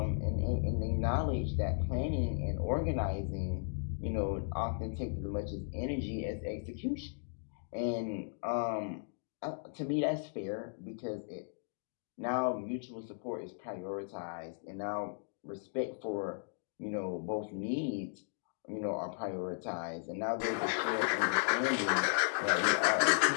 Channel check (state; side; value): silent; right; digital silence